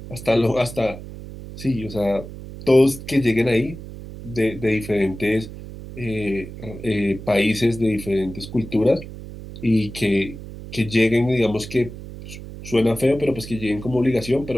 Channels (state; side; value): noise; right; hum, 12 dB below the sound